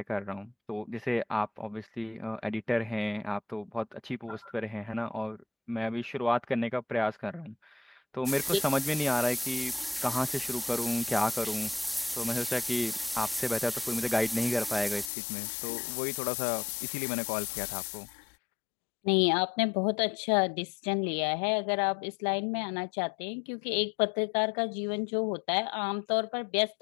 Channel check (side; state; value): right; drops out; at 15.1 s